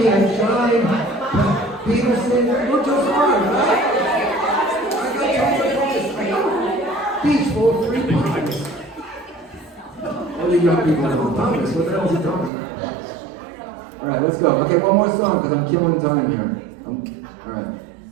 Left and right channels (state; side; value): drops out; left; at 12.5 s